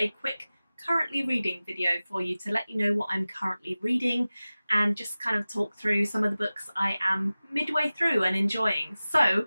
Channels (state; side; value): inverted; both; correlation -0.97